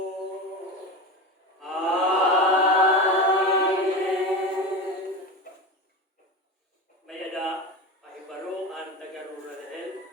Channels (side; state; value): both; normal; correlation 0.24